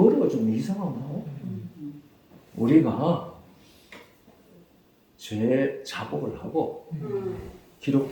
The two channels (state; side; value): identical; both; correlation 1.00